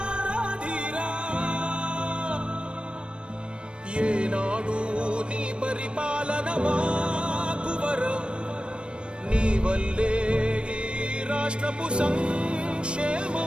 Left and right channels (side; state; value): left; late; 0.057 ms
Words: ఏనాడు నీ పరిపాలన మాకు వరం నీ వల్లే ఈ రాష్ట్రపు